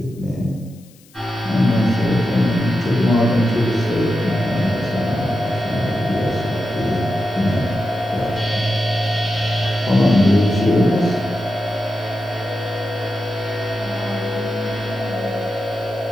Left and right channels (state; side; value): noise; left; hiss, 28 dB below the sound